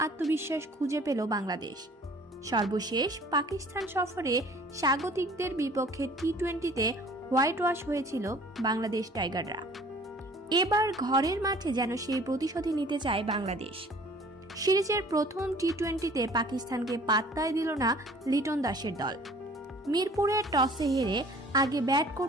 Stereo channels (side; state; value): both; normal; correlation 0.51